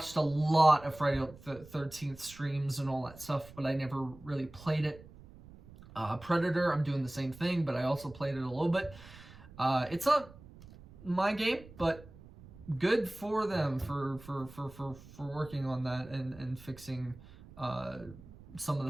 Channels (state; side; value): noise; right; rumble, 20 dB below the sound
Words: a lot of Friday the 13th streams and all that stuff, but I never really played it. Predator, I'm doing the same thing, but I also played it a little bit. It's not my game, but good for them for working on that and fixing some of